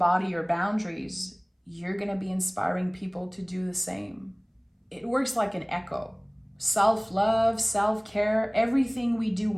your boundaries, you're going to be inspiring people to do the same. It works like an echo. Self-love, self-care, everything we do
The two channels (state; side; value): identical; both; correlation 1.00